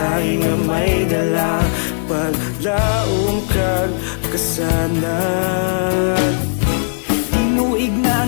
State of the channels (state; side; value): silent; right; 59 dB below the other